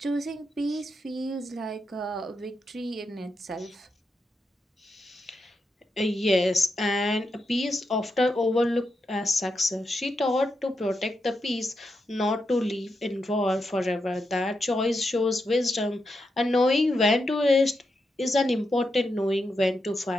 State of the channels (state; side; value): normal; both; correlation 0.85